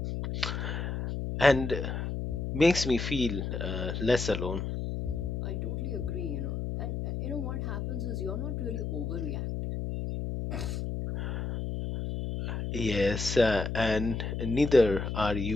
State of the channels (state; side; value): noise; left; hum, 3 dB below the sound